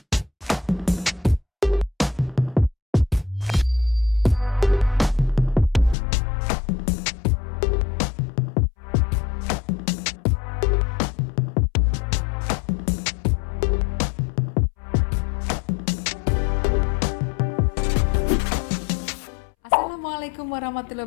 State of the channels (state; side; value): drops out; right; at 6.0 s